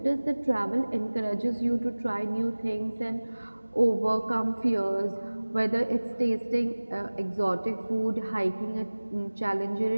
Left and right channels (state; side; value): inverted; both; correlation -1.00